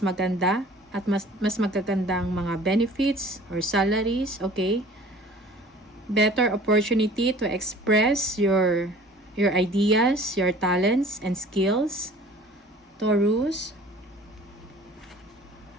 at mas magagandang mga benefits or salaries, okay? Better opportunity to express your ideas, your talents and skills. Taurus.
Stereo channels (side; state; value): both; normal; correlation 0.47